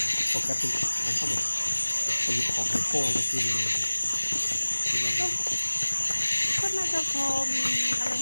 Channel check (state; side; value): inverted; both; correlation -1.00